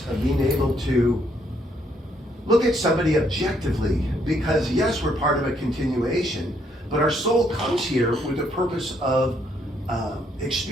of being able to look at somebody objectively, because yes, we're part of a continuation, but our soul comes here with the purpose of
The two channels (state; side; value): normal; both; correlation 0.71